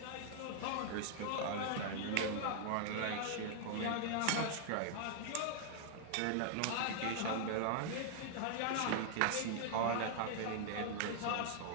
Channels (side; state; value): both; different; correlation 0.00